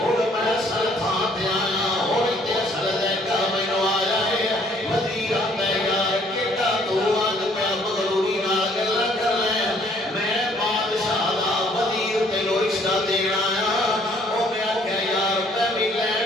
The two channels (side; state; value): both; normal; correlation 0.62